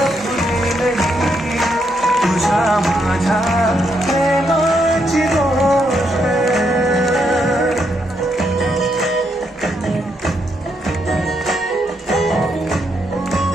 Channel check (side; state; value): both; normal; correlation 0.78